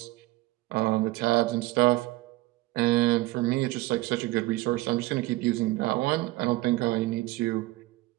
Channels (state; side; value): quieter; left; 18.7 dB